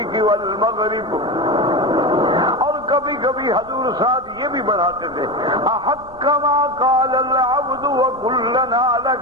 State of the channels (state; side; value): noise; right; rumble, 25 dB below the sound